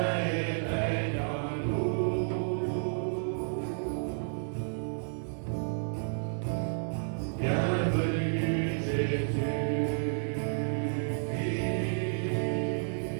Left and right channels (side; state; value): left; silent; digital silence